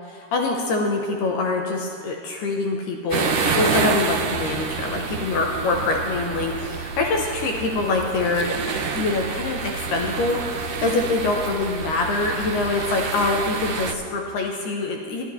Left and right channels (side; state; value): right; late; 13 ms